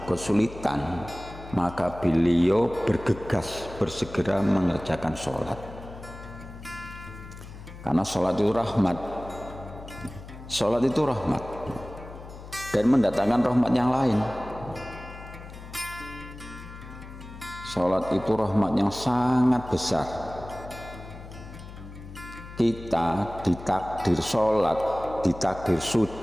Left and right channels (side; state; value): left; noise; hum, 14 dB below the sound